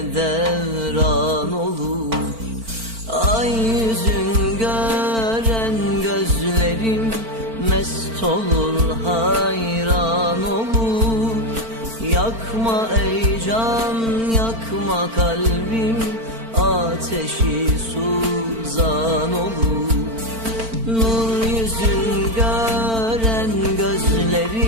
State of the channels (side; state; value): left; late; 4.4 ms